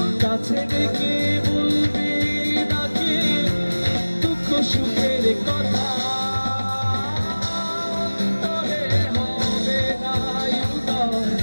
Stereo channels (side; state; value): both; inverted; correlation -1.00